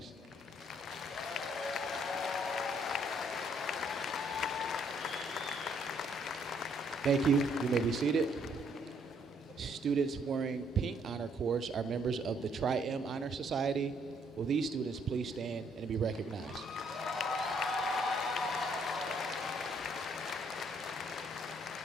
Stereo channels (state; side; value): normal; both; correlation 0.68